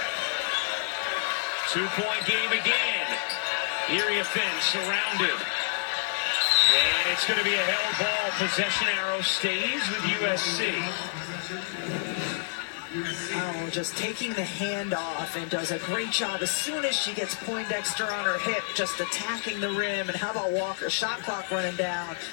2-point game again. Iriafen surrounded. And it's going to be a held ball. Possession arrow stays with USC. Oh, just taking the hand off and does a great job as soon as she gets Poindexter on her hip, just attacking the rim. And how about Walker? Shot clock running down.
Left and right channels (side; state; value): right; silent; 55 dB below the other